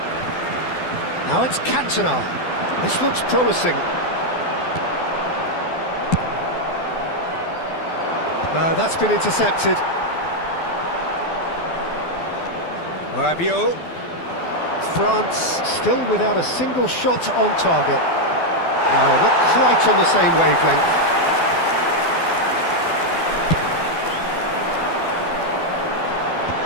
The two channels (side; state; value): right; late; 12 ms